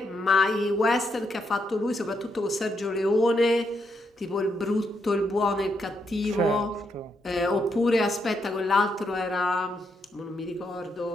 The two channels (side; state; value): both; normal; correlation 0.80